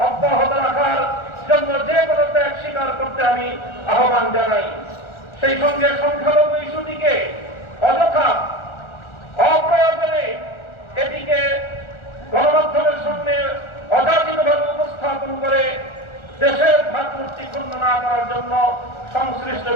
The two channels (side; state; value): right; late; 1.4 ms